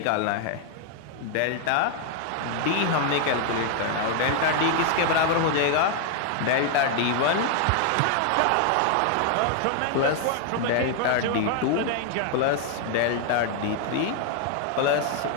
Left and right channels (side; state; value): both; different; correlation 0.00